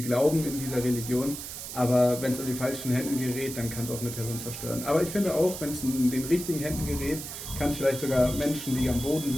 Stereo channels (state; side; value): noise; right; hiss, 9 dB below the sound